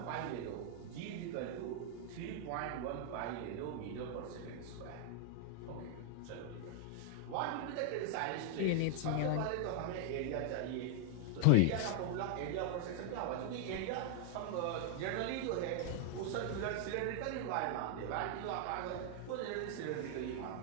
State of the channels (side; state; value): both; different; correlation 0.00